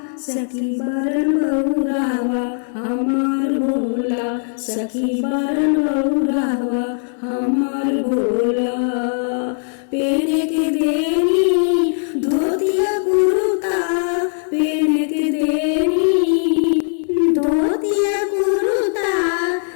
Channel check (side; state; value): right; silent; 66 dB below the other